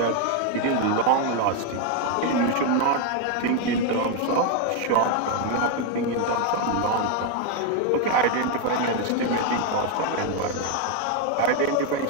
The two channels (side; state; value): both; different; correlation 0.01